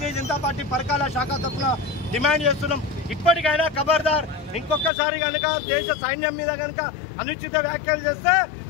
జనతా పార్టీ పరకాల శాఖ తరఫున డిమాండ్ చేస్తున్నాం. ఇప్పటికైనా ఖబర్దార్, ఇంకొకసారి కనుక దేశ సైన్యం మీద కనుక అనుచిత వ్యాఖ్యలు చేస్తే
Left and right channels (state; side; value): drops out; right; at 4.9 s